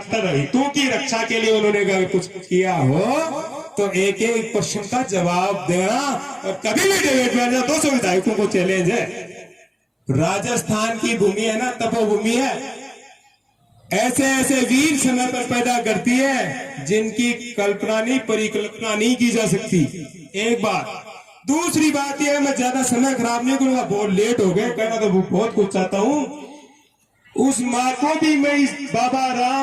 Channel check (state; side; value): identical; both; correlation 1.00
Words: हितों की रक्षा के लिए उन्होंने अगर कुछ किया हो तो एक एक क्वेश्चन का जवाब देना। और कभी भी डिबेट में 200 विधायकों को चैलेंज है। राजस्थान की भूमि है ना, तपोभूमि है, ऐसे ऐसे वीर समय पर पैदा करती है जिनकी कल्पना नहीं, परिकल्पना नहीं की जा सकती। एक बात। दूसरी बात यह, मैं ज्यादा समय खराब नहीं करूंगा, बहुत लेट हो गए, कहना तो बहुत कुछ चाहता हूं। उस माँ को भी मैं इस बाबा